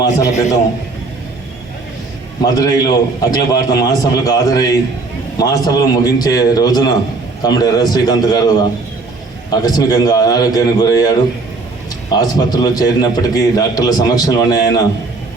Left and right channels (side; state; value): left; quieter; 3.6 dB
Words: మాసాల క్రితం మదురైలో అఖిల భారత మహాసభలకు హాజరై మహాసభలు ముగించే రోజున కామ్రేడ్ ఎర్ర శ్రీకాంత్ గారు ఆకస్మికంగా అనారోగ్యానికి గురయ్యాడు. ఆసుపత్రిలో చేరినప్పటికీ డాక్టర్ల సమక్షంలోనే ఆయన